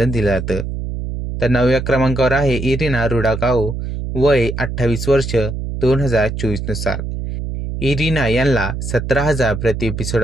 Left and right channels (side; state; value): right; noise; hum, 5 dB below the sound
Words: दिलं जातं. तर नवव्या क्रमांकावर आहे इरिना रुडाकाओ. वय 28 वर्ष 2024 नुसार. इरिना यांना 17,000 प्रति एपिसोड